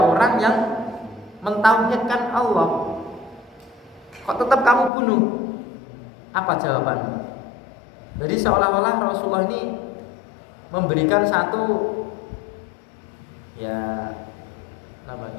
orang yang mentauhidkan Allah, kok tetap kamu bunuh? Apa jawabanmu? Jadi seolah-olah Rasulullah ini memberikan satu ya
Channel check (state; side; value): drops out; right; at 4.9 s